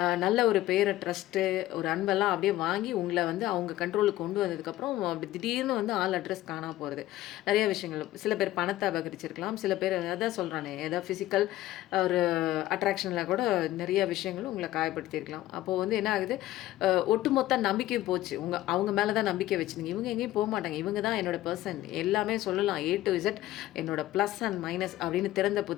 நல்ல ஒரு பேரை, ட்ரஸ்ட்டு, ஒரு அன்பெல்லாம் அப்படியே வாங்கி உங்களை வந்து அவங்க கண்ட்ரோலுக்கு கொண்டு வந்ததுக்கப்புறம் அப்படி திடீர்னு வந்து ஆள் அட்ரஸ் காணாமல் போகிறது. நிறைய விஷயங்கள், சில பேர் பணத்தை அபகரிச்சிருக்கலாம், சில பேர் அதான் சொல்கிறானே ஏதாவது ஃபிசிக்கல் ஒரு அட்ராக்ஷனில் கூட நிறைய விஷயங்களும் உங்களை காயப்படுத்தியிருக்கலாம். அப்போது வந்து என்ன ஆகுது, ஒட்டுமொத்த நம்பிக்கையும் போச்சு. அவங்க மேலே தான் நம்பிக்கை வச்சுருங்க. இவங்க எங்கேயும் போக மாட்டாங்க, இவங்க தான் என்னோட பர்சன், எல்லாமே சொல்லலாம் A to Z என்னோட ப்ளஸ் அண்ட் மைனஸ் அப்படின்னு திறந்த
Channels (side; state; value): right; quieter; 15.3 dB